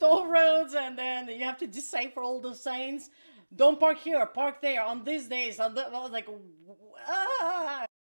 roads, and then you have to decipher all the signs. Don't park here, park there, on these days. I was like, ah.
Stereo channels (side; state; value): both; inverted; correlation -1.00